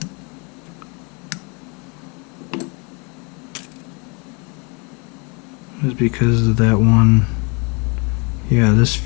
It was because of that one, yeah, this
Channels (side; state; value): right; quieter; 31.6 dB